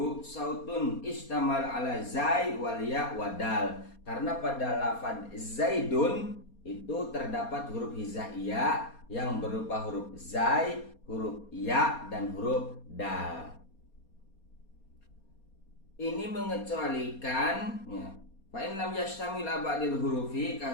sautun istamal ala zai wal ya wadal. Karena pada lafad zaidun itu terdapat huruf hijaiyah yang berupa huruf zai, huruf ya, dan huruf dal. Ini mengecualikan fa in lam yashtamil abadil hurufi ka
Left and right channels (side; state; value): right; late; 4.3 ms